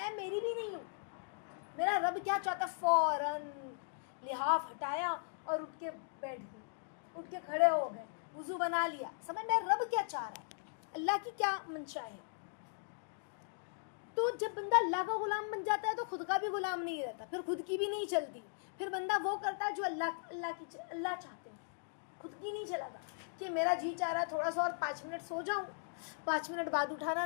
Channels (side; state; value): right; silent; digital silence